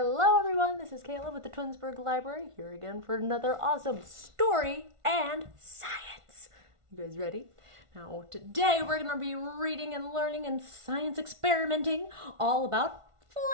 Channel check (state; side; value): late; left; 1.5 ms